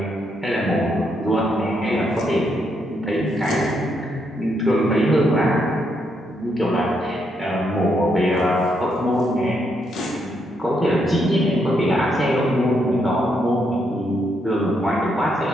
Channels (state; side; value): normal; both; correlation 0.77